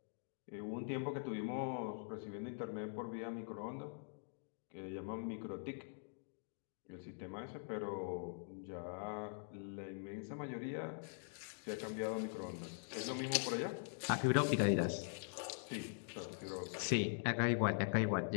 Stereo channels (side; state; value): right; silent; digital silence